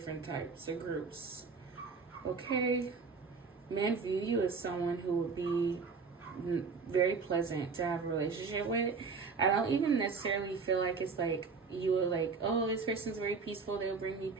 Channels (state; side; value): quieter; left; 4.9 dB